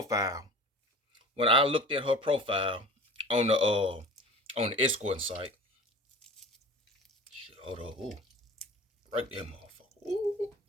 on the escort site, shit, hold on, ooh, right there, motherfucker, ooh,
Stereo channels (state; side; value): normal; both; correlation 0.39